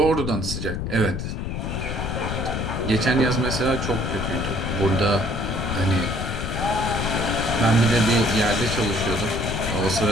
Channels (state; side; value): noise; left; rumble, 3 dB below the sound